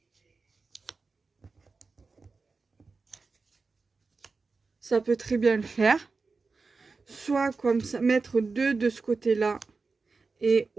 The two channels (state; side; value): quieter; left; 4.2 dB